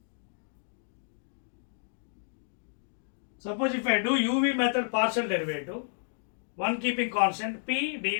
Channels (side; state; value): right; silent; digital silence